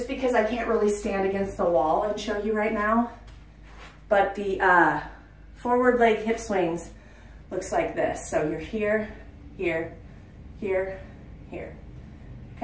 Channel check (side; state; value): both; identical; correlation 1.00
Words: because I can't really stand against the wall and show you right now. But the forward leg hip swings looks like this. So you're here, here, here, here.